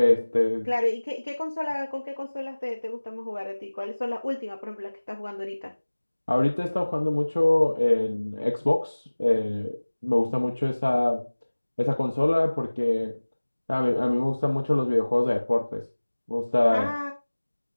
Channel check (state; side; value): inverted; both; correlation -1.00